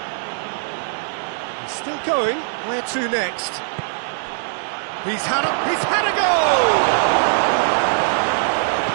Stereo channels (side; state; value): left; silent; digital silence